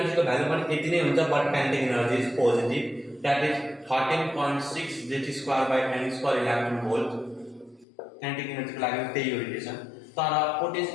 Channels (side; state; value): right; drops out; at 7.9 s